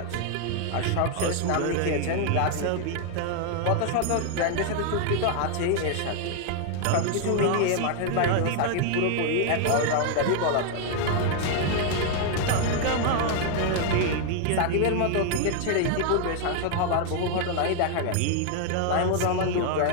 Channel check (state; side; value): different; both; correlation 0.00